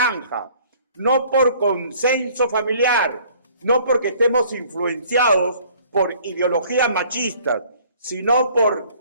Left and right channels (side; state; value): both; inverted; correlation -0.56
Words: no por consenso familiar, no porque estemos influenciados por ideologías machistas, sino